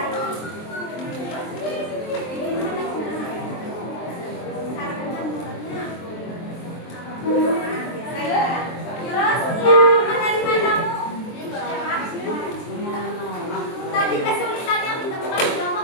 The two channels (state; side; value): late; right; 23 ms